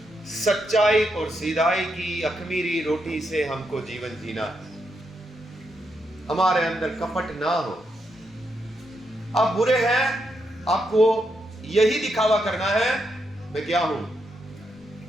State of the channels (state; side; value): normal; both; correlation 0.81